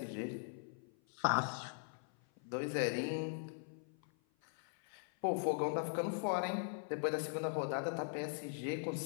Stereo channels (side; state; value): right; silent; 51 dB below the other